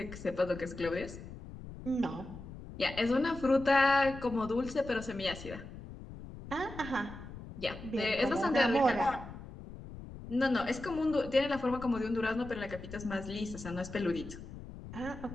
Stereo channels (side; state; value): left; noise; rumble, 13 dB below the sound